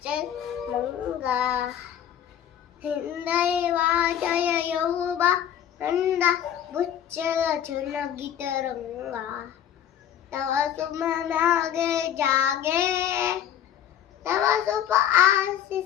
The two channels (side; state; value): right; quieter; 10.1 dB